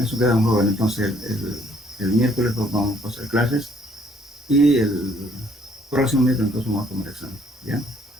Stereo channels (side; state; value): both; normal; correlation 0.63